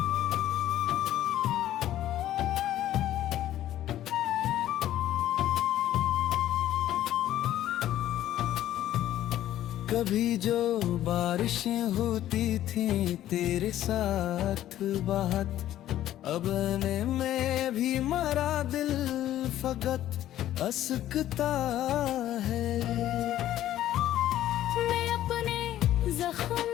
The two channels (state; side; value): quieter; right; 12.9 dB